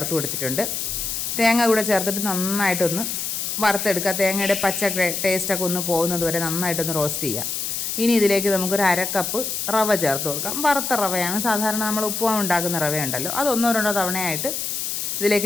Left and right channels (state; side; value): noise; left; hiss, 3 dB below the sound